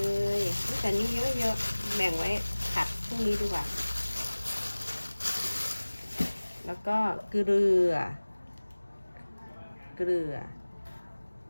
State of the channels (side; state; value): both; inverted; correlation -1.00